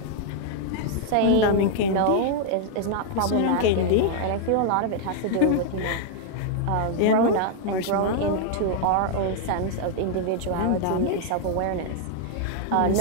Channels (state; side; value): different; both; correlation 0.00